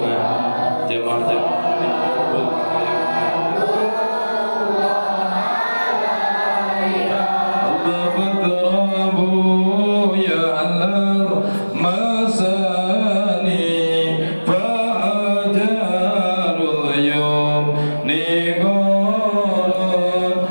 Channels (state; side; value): inverted; both; correlation -1.00